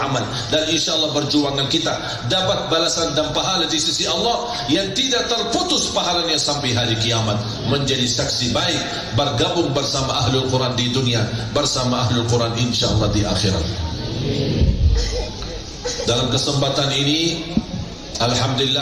dan insyaAllah perjuangan kita dapat balasan dan pahala di sisi Allah yang tidak terputus pahalanya sampai hari kiamat, menjadi saksi baik, bergabung bersama Ahlul Quran di dunia, bersama Ahlul Quran insyaAllah di akhirat. Dalam kesempatan ini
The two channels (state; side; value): identical; both; correlation 1.00